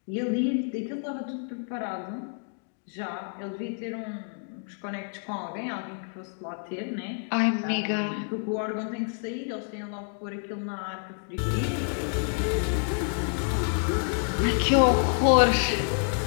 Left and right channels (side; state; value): right; silent; 59 dB below the other